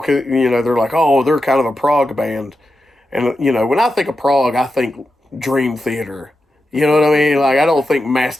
could, they're like, oh, they're kind of a prog band. And, when I think of prog, I think Dream Theater. You know what I mean? Like, I don't think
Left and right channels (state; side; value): normal; both; correlation 0.89